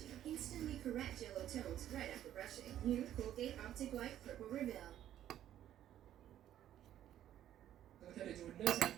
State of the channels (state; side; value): quieter; left; 11.7 dB